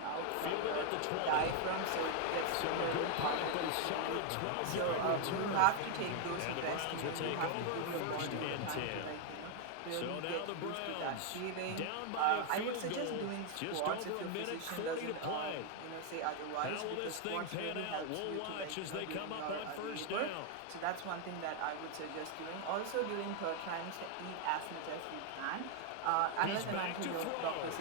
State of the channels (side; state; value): both; different; correlation 0.00